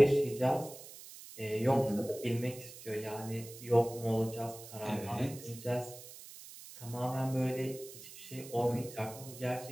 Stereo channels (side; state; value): right; noise; hiss, 15 dB below the sound